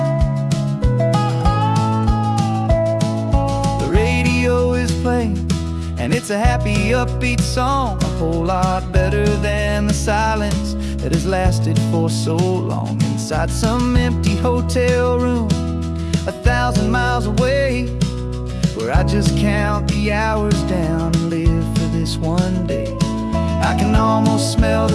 The radio is playing, and it's a happy, upbeat song, a whole lot better than the silence that has lasted for so long. Inside some empty hotel room 1,000 miles away, where I just count the hours down and live for this one day. I can almost smell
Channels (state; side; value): identical; both; correlation 1.00